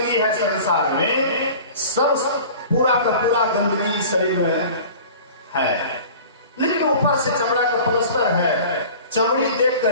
है संसार में, सब पूरा का पूरा गंदगी इस शरीर में है, लेकिन ऊपर से चमड़ा का पलस्तर है। चमड़ी देख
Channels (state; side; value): inverted; both; correlation -0.42